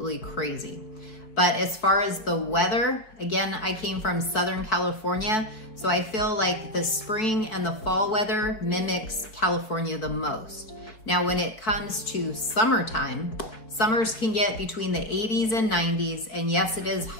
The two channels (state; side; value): late; right; 4.7 ms